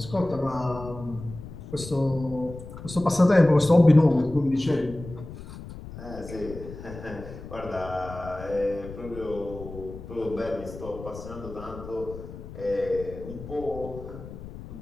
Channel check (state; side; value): noise; left; rumble, 13 dB below the sound